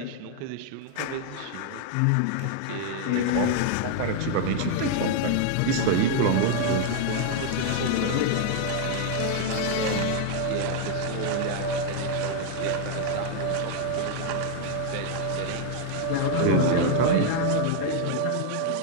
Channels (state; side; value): different; both; correlation 0.00